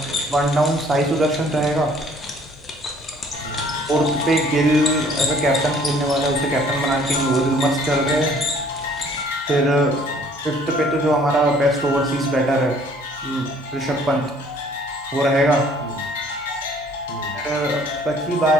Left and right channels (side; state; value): both; normal; correlation 0.57